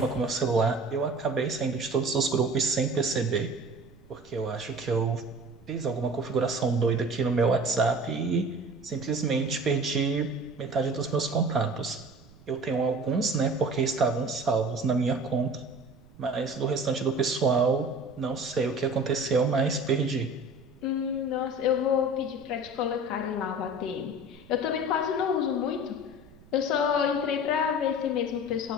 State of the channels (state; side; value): noise; right; rumble, 25 dB below the sound